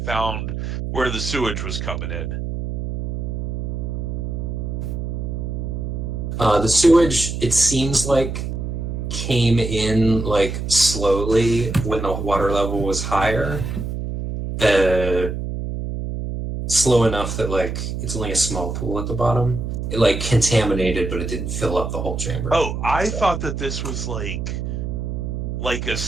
where the sewage was coming in. The sewage, it seems like, came in like slowly when the water level was higher. Slow enough that like it's only a small pool at the bottom. It like contaminated, but it didn't fill up the whole chamber. Oh, I thought that this was like a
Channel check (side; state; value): right; noise; hum, 4 dB below the sound